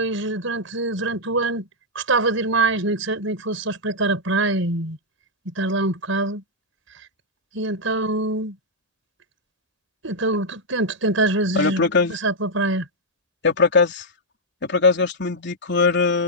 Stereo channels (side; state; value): both; normal; correlation -0.05